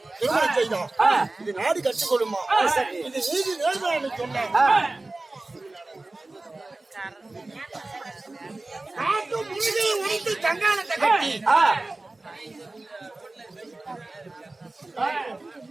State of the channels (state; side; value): quieter; left; 3.0 dB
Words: திருமணம் செய்தோம் ஆ. இது நாடு கற்றுக்கொள்ளுமா சரி. இது நீதி நேர்மையான்னு சொன்னேன் ஆ. காட்டு முழுகையை உடைத்து கங்காணத்தை கட்டி ஆ.